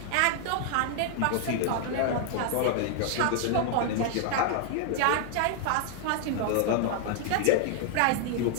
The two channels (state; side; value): different; both; correlation 0.00